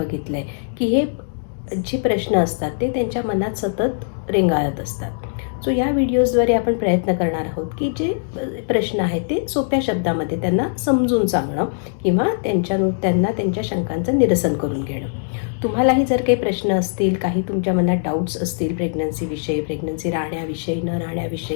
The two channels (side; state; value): right; silent; digital silence